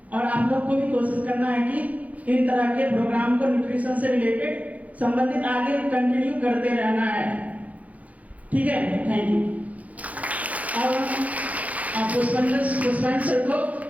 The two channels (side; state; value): left; late; 0.071 ms